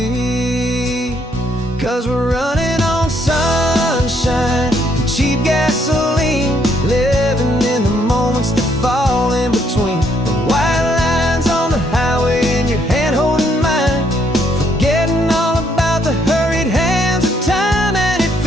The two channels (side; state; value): both; normal; correlation 0.71